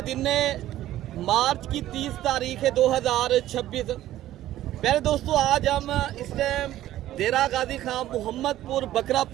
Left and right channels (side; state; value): left; quieter; 13.8 dB